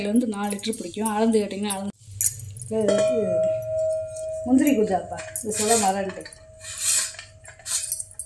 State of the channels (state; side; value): identical; both; correlation 1.00